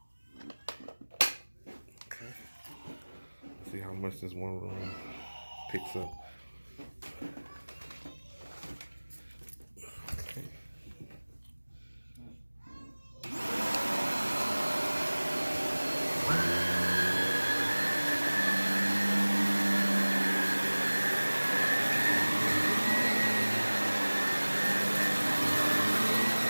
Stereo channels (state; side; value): inverted; both; correlation -1.00